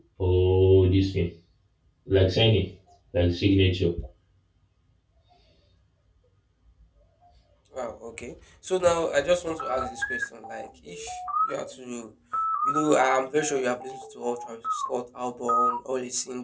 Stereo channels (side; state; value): both; identical; correlation 1.00